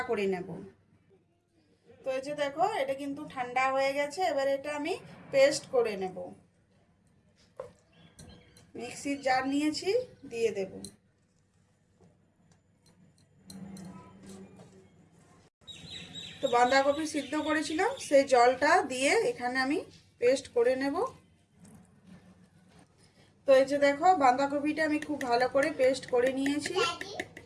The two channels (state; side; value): identical; both; correlation 1.00